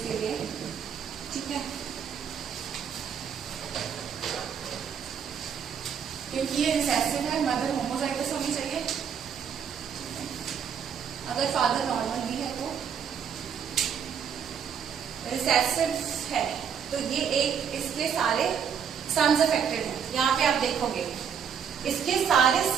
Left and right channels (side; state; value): left; quieter; 7.6 dB